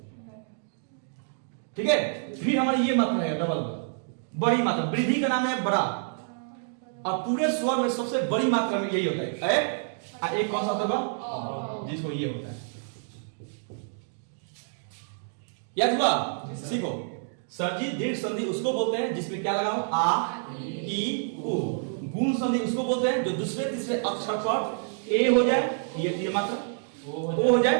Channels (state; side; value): silent; left; digital silence